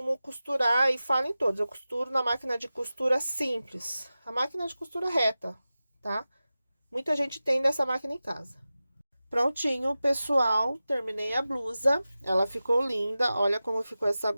costurar e falo em todos. Eu costuro na máquina de costura simples. A máquina de costura reta, tá? Muita gente tem dessa máquina em casa. Prontinho, pessoal. Terminei a blusa. Ela ficou linda. Olha como ficou essa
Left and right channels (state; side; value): inverted; both; correlation -0.95